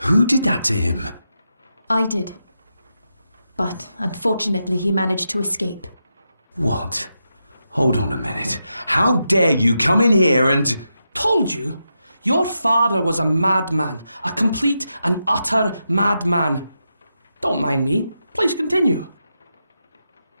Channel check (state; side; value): inverted; both; correlation -0.86